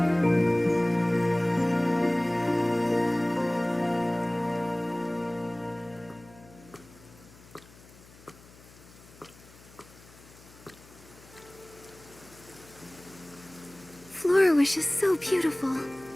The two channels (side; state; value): left; noise; hum, 23 dB below the sound